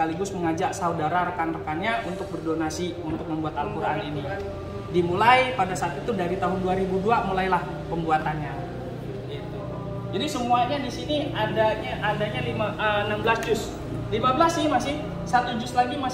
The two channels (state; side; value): identical; both; correlation 1.00